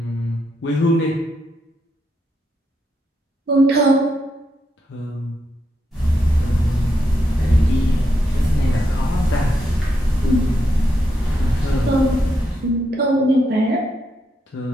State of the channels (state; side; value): normal; both; correlation 0.82